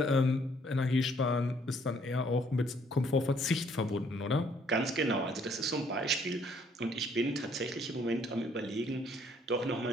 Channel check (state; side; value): normal; both; correlation 0.64